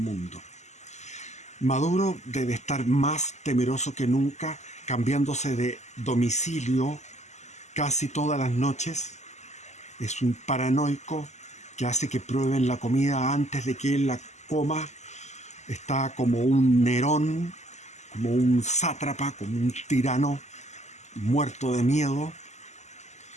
Maduro debe estar más temeroso que nunca, cambiándose de domicilio casi todas las noches. Es un paranoico que hace que prueben la comida antes de que él la coma. Está como un Nerón, como un sátrapa, como un tirano muerto de miedo.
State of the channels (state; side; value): late; right; 0.33 ms